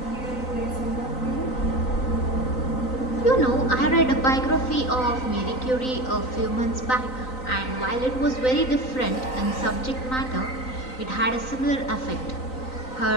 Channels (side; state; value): right; late; 3.9 ms